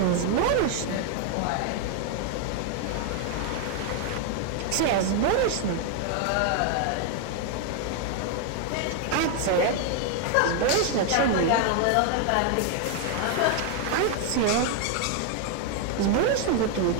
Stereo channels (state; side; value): different; both; correlation 0.00